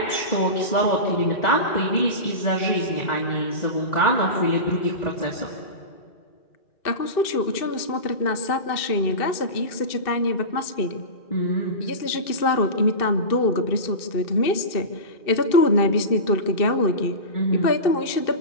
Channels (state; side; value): late; right; 2.6 ms